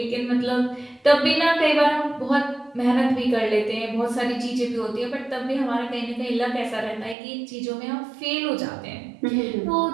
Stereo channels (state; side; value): drops out; left; at 7.2 s